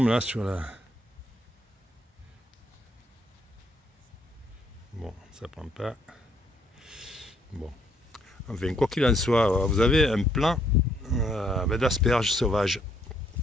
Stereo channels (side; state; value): both; normal; correlation 0.69